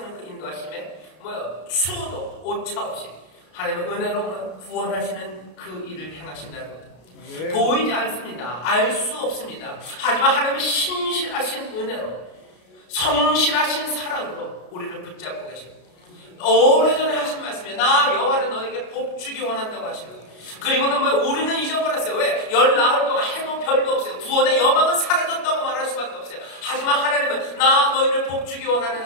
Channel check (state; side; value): late; right; 33 ms